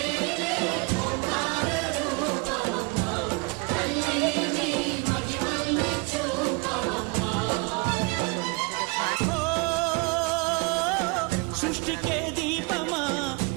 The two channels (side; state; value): left; quieter; 29.0 dB